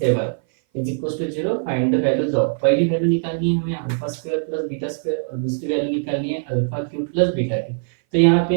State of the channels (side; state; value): left; silent; 58 dB below the other